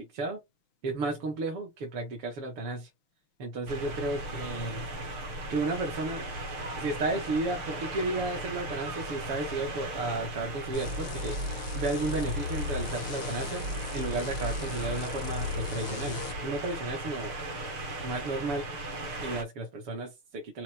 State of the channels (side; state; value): left; late; 6.5 ms